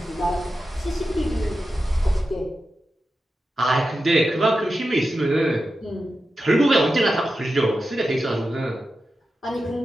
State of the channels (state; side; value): normal; both; correlation 0.91